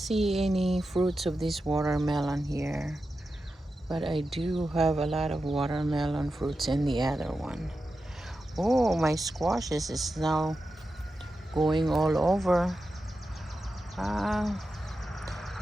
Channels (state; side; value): normal; both; correlation 0.91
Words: any fruits of this watermelon here. But I do have a lot of watermelon fruits in the other one. Oh, my squashes is now going all over.